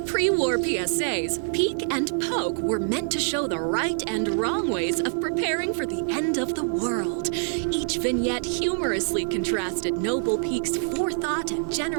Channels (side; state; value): left; silent; digital silence